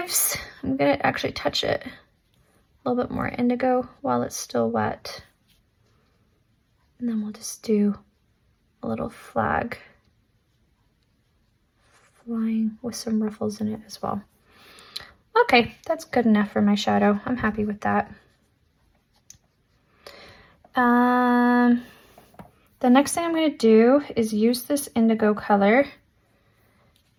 I'm going to actually touch it a little bit more indigo while it's still wet. And then we'll just do a little flag flying with some ruffles in it as well. Okay, that's good enough for my shadow. I'm happy with that. The next thing I'm going to do is use this indigo color,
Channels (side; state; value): both; identical; correlation 1.00